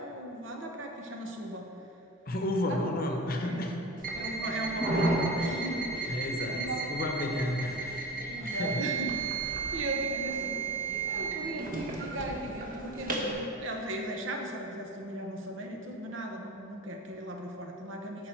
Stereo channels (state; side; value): normal; both; correlation 0.30